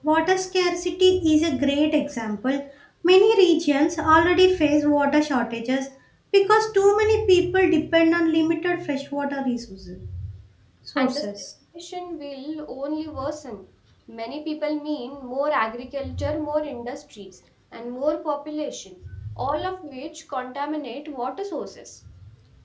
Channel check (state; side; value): identical; both; correlation 1.00